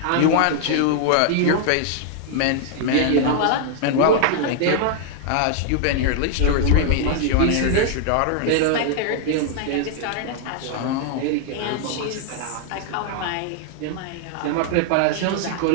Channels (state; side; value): different; both; correlation 0.00